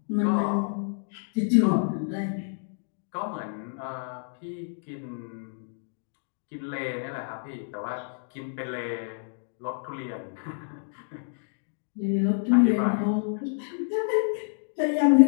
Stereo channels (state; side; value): silent; right; digital silence